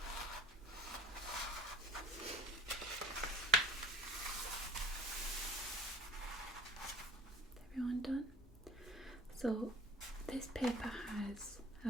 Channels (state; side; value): normal; both; correlation 0.45